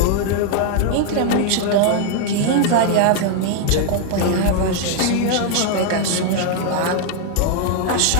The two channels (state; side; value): different; both; correlation 0.00